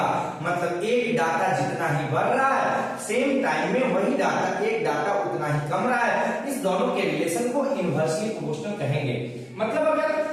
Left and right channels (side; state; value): both; identical; correlation 1.00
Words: मतलब एक डाटा जितना ही बढ़ रहा है, सेम टाइम में वही डाटा, एक डाटा उतना ही कम रहा है। इस दोनों के रिलेशन को इनवर्सली प्रोपोर्शनल कहेंगे। मतलब अगर